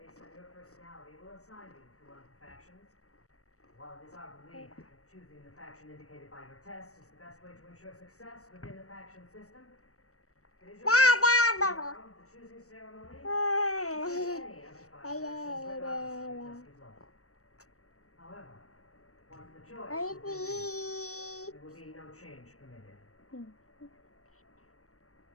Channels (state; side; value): late; right; 0.65 ms